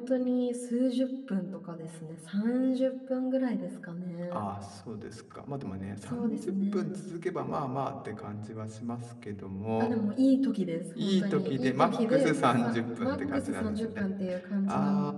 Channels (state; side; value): identical; both; correlation 1.00